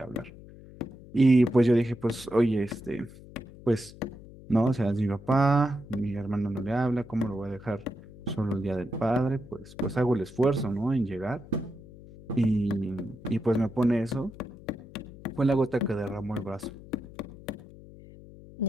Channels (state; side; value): noise; left; hum, 18 dB below the sound